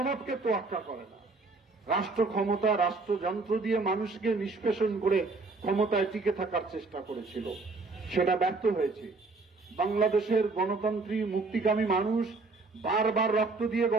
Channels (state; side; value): quieter; left; 3.8 dB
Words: তোয়াক্কা করে না। রাষ্ট্র ক্ষমতা, রাষ্ট্রযন্ত্র দিয়ে মানুষকে নিষ্পেষণ করে ক্ষমতায় টিকে থাকার চেষ্টা করেছিল, সেটা ব্যর্থ হয়েছে। বাংলাদেশের গণতন্ত্রী মুক্তিকামী মানুষ বারবার রক্ত দিয়ে